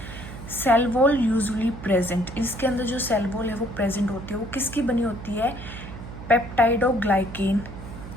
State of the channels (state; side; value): noise; right; hum, 12 dB below the sound